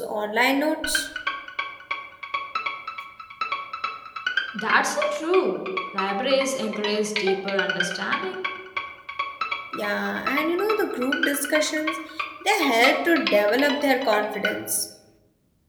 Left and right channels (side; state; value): both; identical; correlation 1.00